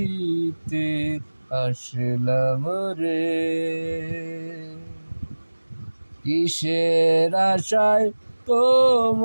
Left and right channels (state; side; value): inverted; both; correlation -1.00